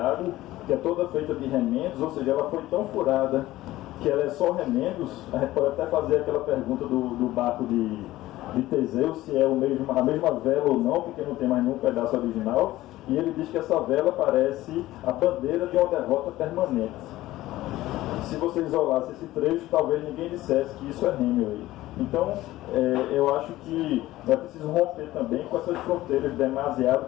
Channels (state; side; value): quieter; right; 16.3 dB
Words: que é toda feita de remendos, ou seja, ela foi tão furada que ela é só remendos. A gente pode até fazer aquela pergunta do barco de Teseu, se é a mesma vela ou não, porque não tem mais nenhum pedaço original, e ele diz que essa vela parece a bandeira de uma derrota permanente. Se você isolasse esse trecho, talvez ninguém dissesse que isso é Hemingway. Então, eu acho que é preciso romper também com essas fronteiras